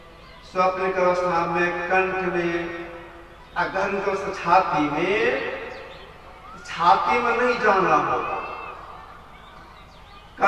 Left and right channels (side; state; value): both; identical; correlation 1.00